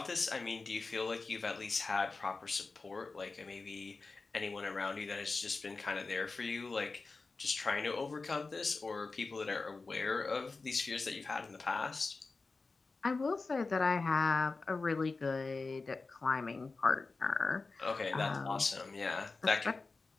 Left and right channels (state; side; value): quieter; right; 3.9 dB